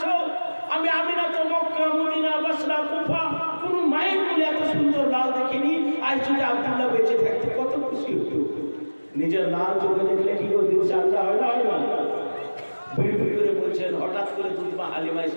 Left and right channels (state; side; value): inverted; both; correlation -1.00